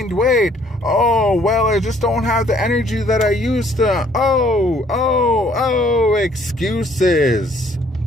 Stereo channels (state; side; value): normal; both; correlation 0.62